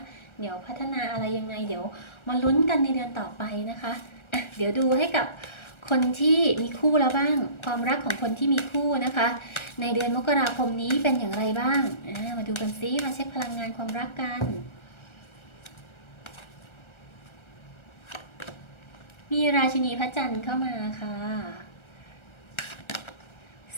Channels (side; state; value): right; late; 1.3 ms